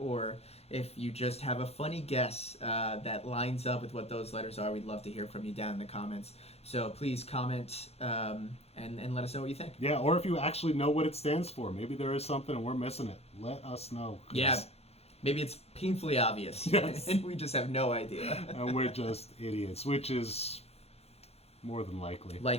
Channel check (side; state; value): right; late; 0.30 ms